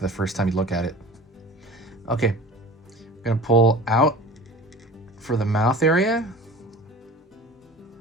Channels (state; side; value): normal; both; correlation 0.39